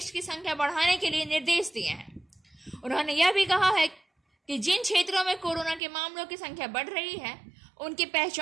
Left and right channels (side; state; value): left; drops out; at 5.8 s